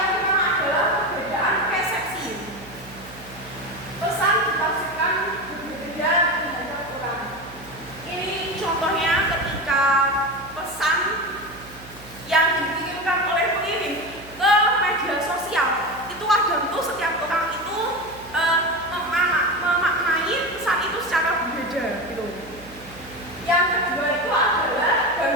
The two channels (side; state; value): right; noise; hum, 19 dB below the sound